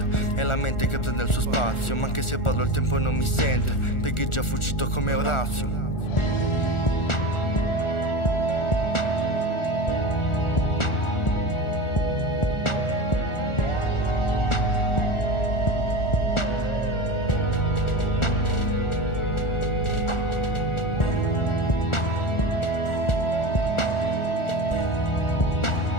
è la mente che prende il suo spazio. Ma anche se parlo il tempo non mi sente, perché è già fuggito come Orazio.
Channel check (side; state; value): right; late; 1.4 ms